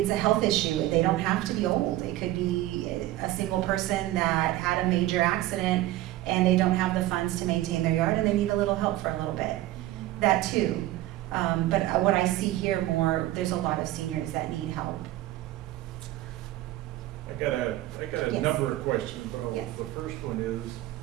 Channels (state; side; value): quieter; left; 15.8 dB